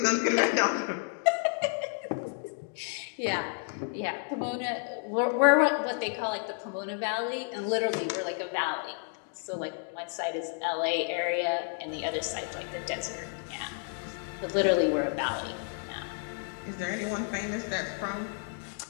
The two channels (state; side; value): silent; right; 56 dB below the other